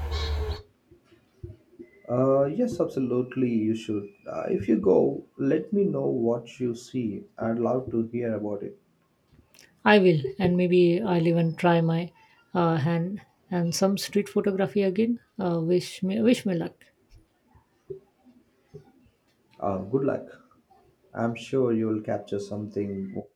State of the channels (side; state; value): both; identical; correlation 1.00